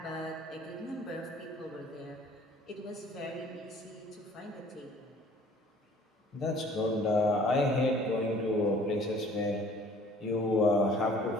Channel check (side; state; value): both; normal; correlation 0.53